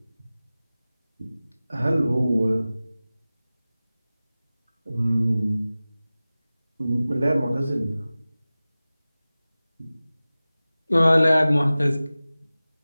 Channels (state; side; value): inverted; both; correlation -0.97